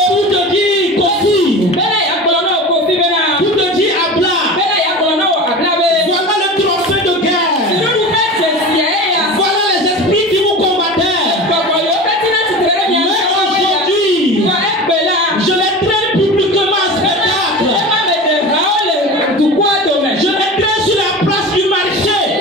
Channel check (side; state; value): both; normal; correlation 0.32